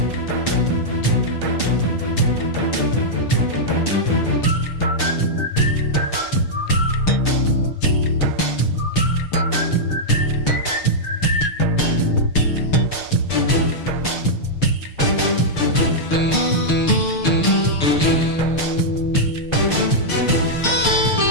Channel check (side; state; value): right; late; 6.6 ms